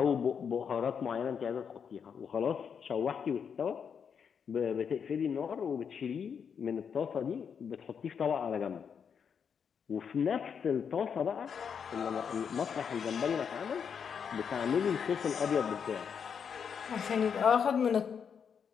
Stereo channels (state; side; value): quieter; right; 7.0 dB